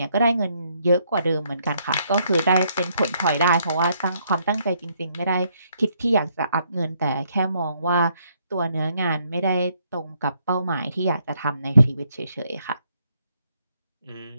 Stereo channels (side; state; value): both; inverted; correlation -0.72